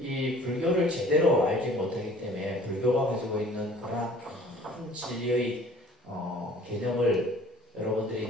이 불교를 제대로 알지 못하기 때문에 불교가 가지고 있는 그러한 큰 진리의 개념을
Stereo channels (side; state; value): both; normal; correlation 0.50